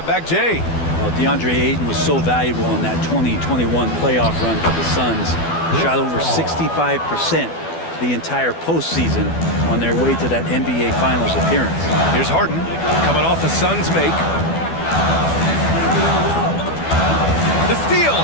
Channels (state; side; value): late; right; 12 ms